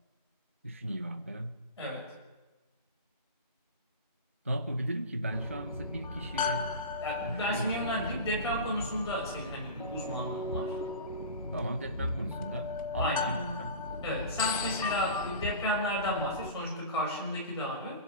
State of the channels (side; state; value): both; inverted; correlation -0.31